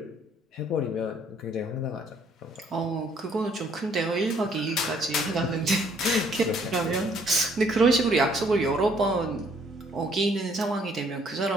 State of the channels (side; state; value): both; normal; correlation 0.64